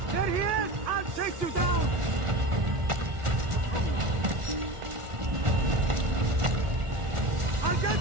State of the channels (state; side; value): late; left; 1.4 ms